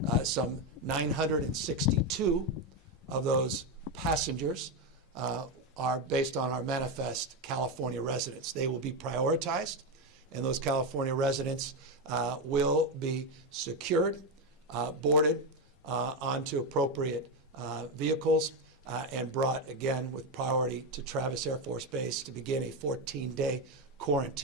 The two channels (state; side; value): normal; both; correlation 0.09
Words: Some 962 of those passengers are based on our manifest California residents. They will be prioritized, and those California residents will be secured, boarded onto appropriate vehicles, and brought again with priority to Travis Air Force Base to begin a 14-day